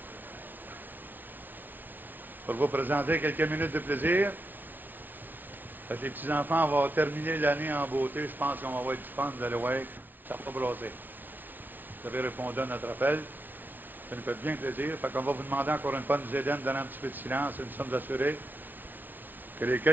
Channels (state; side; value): late; left; 0.087 ms